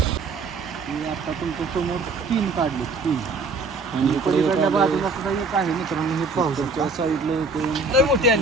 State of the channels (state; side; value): quieter; left; 3.8 dB